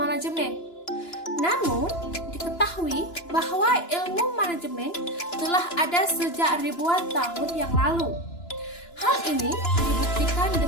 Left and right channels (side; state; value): right; late; 2.9 ms